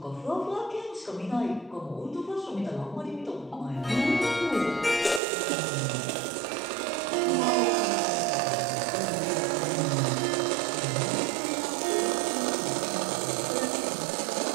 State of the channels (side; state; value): left; drops out; at 5.2 s